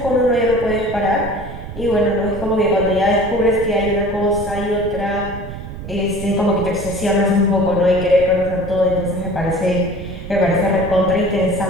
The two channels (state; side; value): noise; right; rumble, 11 dB below the sound